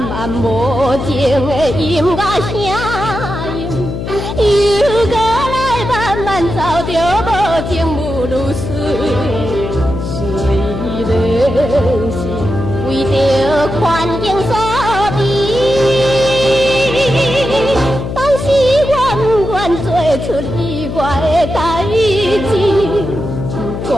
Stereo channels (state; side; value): noise; left; hum, 5 dB below the sound